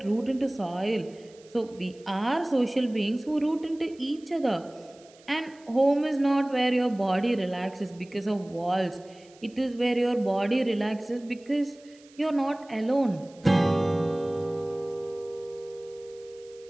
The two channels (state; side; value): noise; right; hiss, 27 dB below the sound